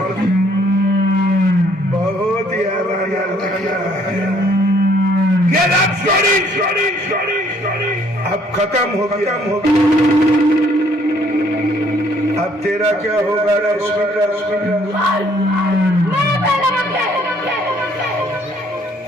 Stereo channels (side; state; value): both; normal; correlation 0.63